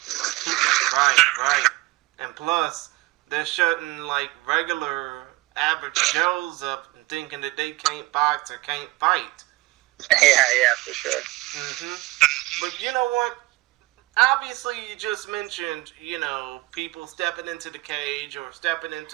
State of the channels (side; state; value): left; quieter; 21.0 dB